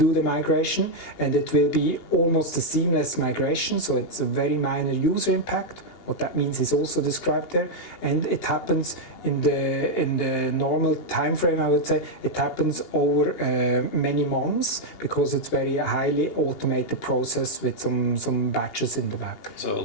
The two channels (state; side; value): late; right; 2.8 ms